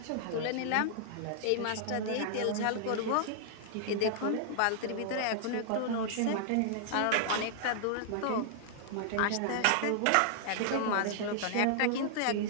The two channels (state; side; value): different; both; correlation -0.01